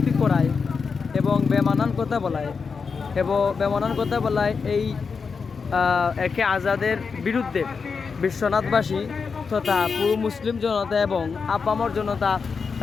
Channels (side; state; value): right; quieter; 5.3 dB